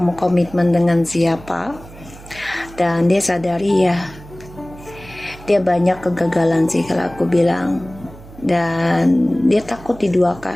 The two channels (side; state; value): right; noise; hum, 19 dB below the sound